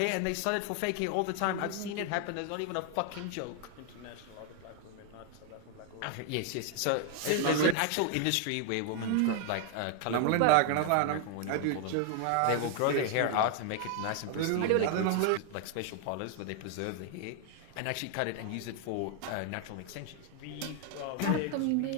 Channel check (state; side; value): different; both; correlation 0.00